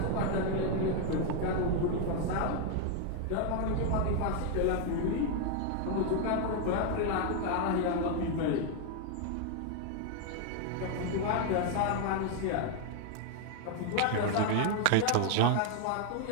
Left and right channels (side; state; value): both; different; correlation 0.00